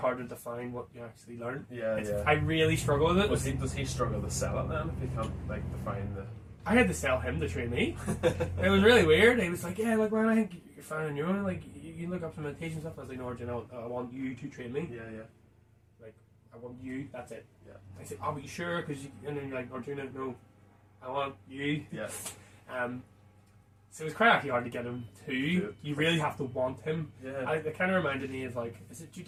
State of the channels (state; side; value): identical; both; correlation 1.00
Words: to define what you actually learn. I really struggle with it. Does he struggle to sell it then if he can't like define the... I had to sell him to train me. It was really weird. He was like, yeah, like, well, I think you're fine on your own. Like, you can look up some meditation stuff. I was like, no, Arjun, I want you to train me. Yeah. Like, I want you, that's it. Yeah. I said, oh, but you sure? And then you're like, Arjun, no, I want you. Yeah. So it was quite actually hard to get him to. You really have to want him. Yeah. It kind of reminded me of, like, is it